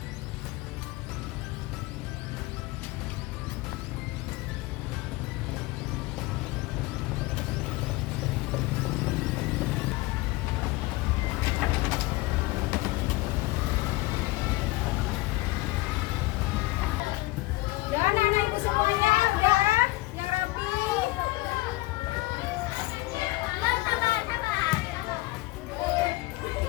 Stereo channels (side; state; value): right; quieter; 20.5 dB